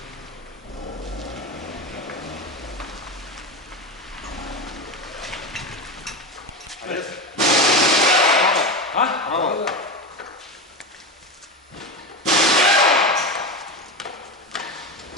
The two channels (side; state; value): both; normal; correlation 0.20